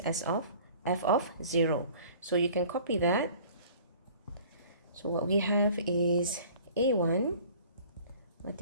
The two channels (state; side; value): inverted; both; correlation -0.49